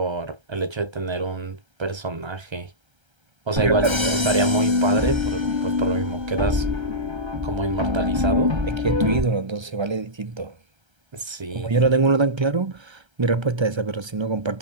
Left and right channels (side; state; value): left; late; 1.3 ms